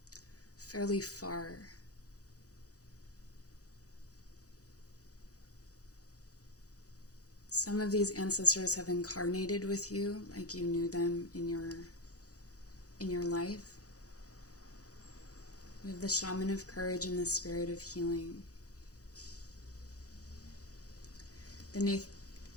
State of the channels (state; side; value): late; right; 0.66 ms